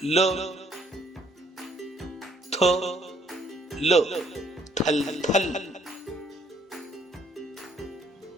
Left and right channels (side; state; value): both; normal; correlation 0.65